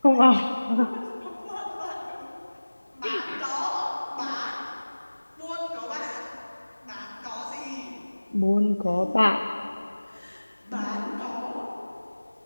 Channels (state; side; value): inverted; both; correlation -1.00